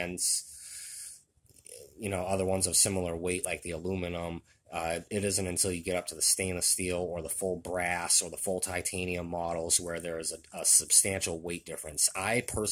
you know, other ones of similar weight like the aluminum It isn't until you get up to the stainless steel or the full brass or the full titanium models where there is a substantial weight difference. I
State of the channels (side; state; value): both; identical; correlation 1.00